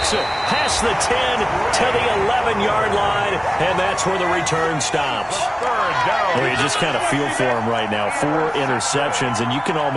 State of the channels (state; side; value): identical; both; correlation 1.00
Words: it past the 10 to the 11-yard line, and that's where the return stops. Well, you just kind of feel for him right now. 4 interceptions, and you can